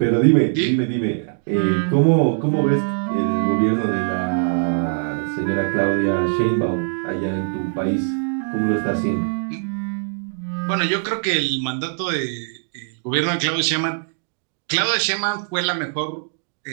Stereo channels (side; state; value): left; silent; digital silence